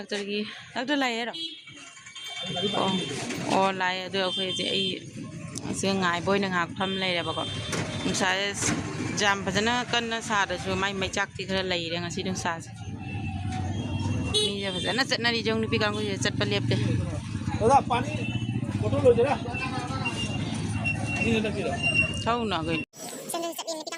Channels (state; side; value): identical; both; correlation 1.00